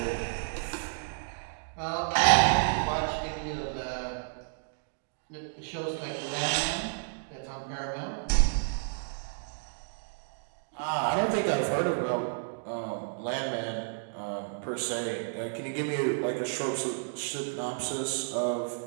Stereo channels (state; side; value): silent; left; digital silence